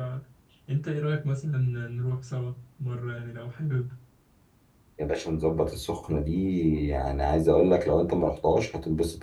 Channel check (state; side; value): identical; both; correlation 1.00